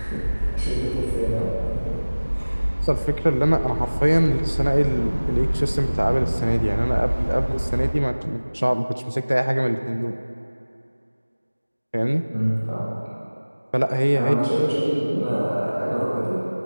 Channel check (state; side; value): inverted; both; correlation -1.00